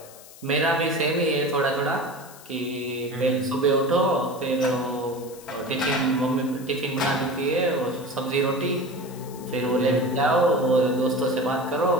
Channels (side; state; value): left; noise; hiss, 19 dB below the sound